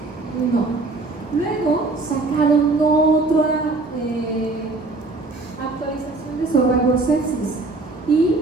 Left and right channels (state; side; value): quieter; left; 3.4 dB